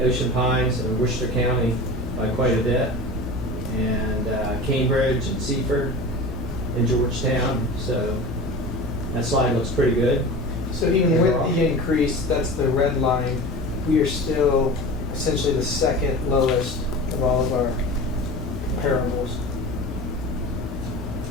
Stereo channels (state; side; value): normal; both; correlation 0.33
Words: Ocean Pines and Worcester County by quite a bit, and Cambridge and Seaford and Georgetown. So that slide looks pretty good. So even with the increase, that's the red line, we are still essentially the second lowest of all of our comparables.